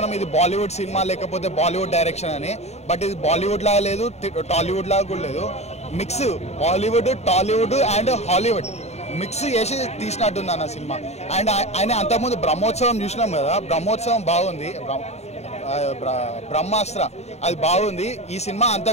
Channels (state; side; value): late; right; 0.32 ms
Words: ఇది బాలీవుడ్ సినిమా లేకపోతే బాలీవుడ్ డైరెక్షన్ అని, బట్ ఇది బాలీవుడ్ లాగా లేదు, టాలీవుడ్ లాగా కూడా లేదు. Mix Bollywood, Tollywood and Hollywood mix చేసి తీసినట్టుంది అన్న సినిమా. అండ్ ఆయన అంతకుముందు బ్రహ్మోత్సవం చూసినాం కదా, బ్రహ్మోత్సవం బాగుంది, బ్రహ్మాస్త్ర అది బాగుంది. ఈ సినిమా